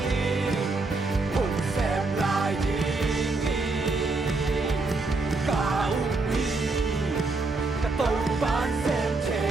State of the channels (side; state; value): left; quieter; 3.5 dB